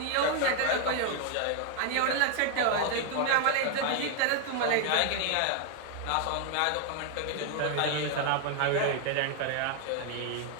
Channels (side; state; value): both; different; correlation 0.00